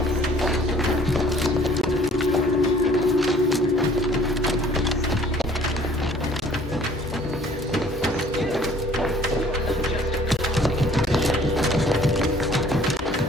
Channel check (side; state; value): both; normal; correlation 0.55